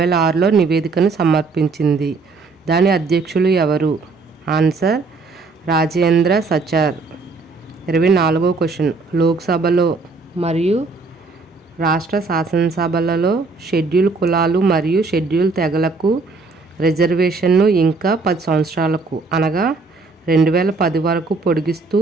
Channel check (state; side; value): quieter; left; 4.0 dB